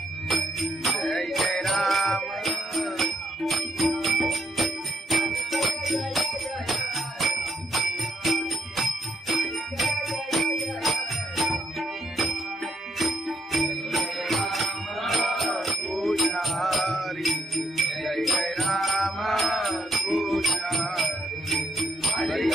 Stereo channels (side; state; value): both; normal; correlation 0.77